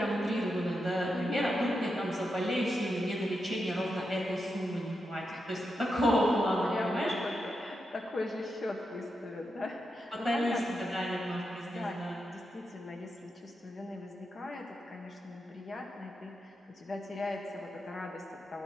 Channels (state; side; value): normal; both; correlation 0.86